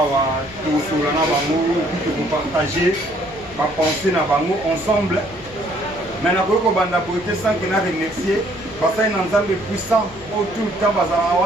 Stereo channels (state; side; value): noise; left; hum, 20 dB below the sound